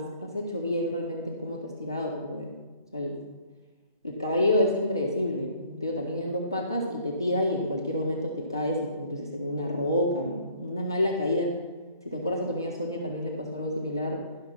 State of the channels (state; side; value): inverted; both; correlation -0.57